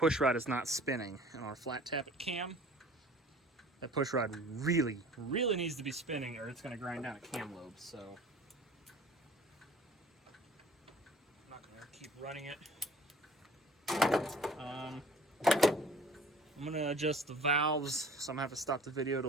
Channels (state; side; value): normal; both; correlation 0.48